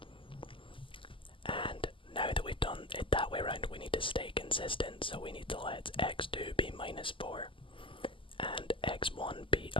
And now that we've done it that way around, we need to stay consistent, so we need to let x2 be minus 4 and x1 be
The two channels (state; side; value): late; right; 0.25 ms